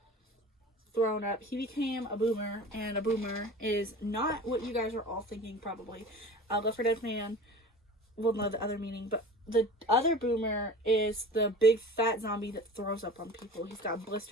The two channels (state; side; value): normal; both; correlation 0.38